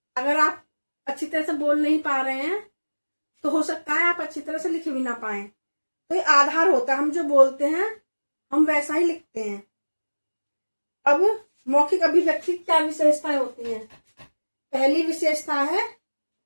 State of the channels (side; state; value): both; inverted; correlation -1.00